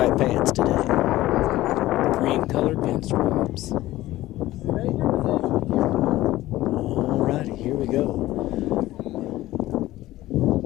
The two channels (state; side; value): quieter; right; 16.2 dB